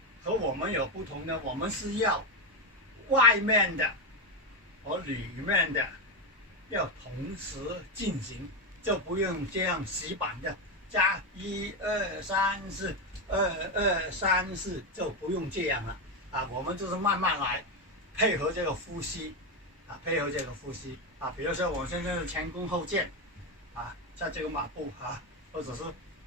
和我们有不同的，我们是要外面的和里面的要同时进行，就不用这样死板的加1、2、3、4， 2、2、3、4，就不用这样了啊。我们就是慢慢来，配合这个呼吸啊，比如说我现在是前弓后箭啊，在这个马步或者是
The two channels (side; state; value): both; normal; correlation 0.09